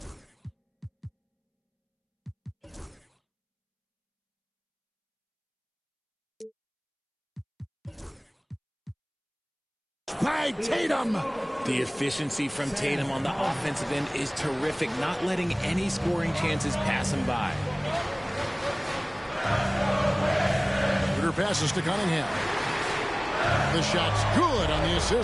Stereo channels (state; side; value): identical; both; correlation 1.00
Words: By Tatum. The efficiency from Tatum on the offensive end is terrific, not letting any scoring chances pass him by. Schroeder passes to Cunningham. The shot's good on the